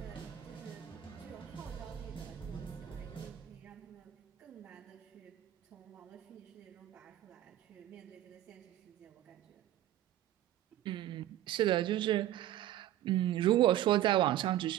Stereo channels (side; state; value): left; quieter; 12.9 dB